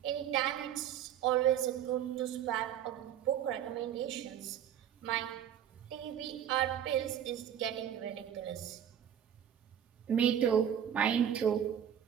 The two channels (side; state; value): left; quieter; 9.6 dB